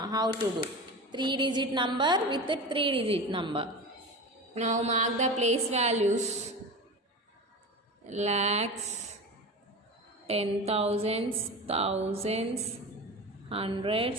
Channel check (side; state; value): both; normal; correlation 0.29